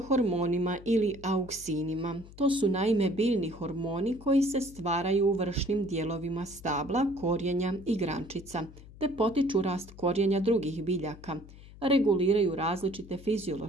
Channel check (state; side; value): noise; left; hum, 19 dB below the sound